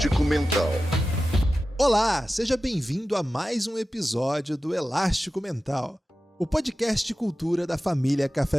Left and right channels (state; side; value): normal; both; correlation 0.94